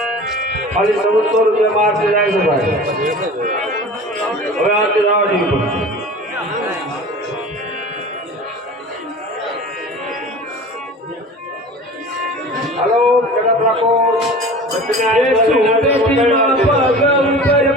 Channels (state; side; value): normal; both; correlation 0.38